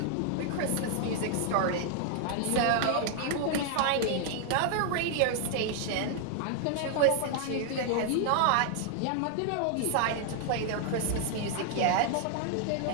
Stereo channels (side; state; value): both; different; correlation 0.00